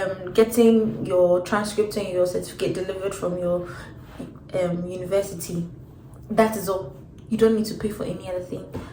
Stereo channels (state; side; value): identical; both; correlation 1.00